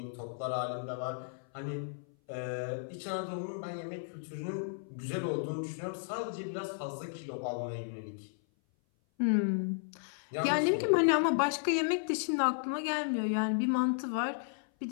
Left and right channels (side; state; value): right; silent; 55 dB below the other